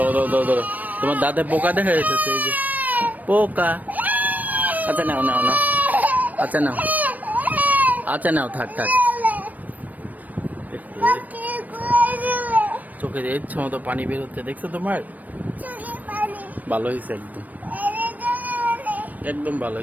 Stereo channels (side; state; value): left; late; 0.080 ms